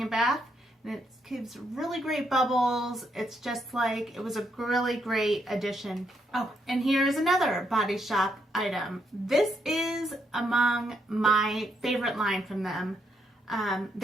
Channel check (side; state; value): both; normal; correlation 0.77